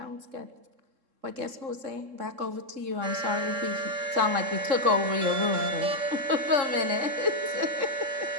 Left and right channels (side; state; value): left; late; 3.7 ms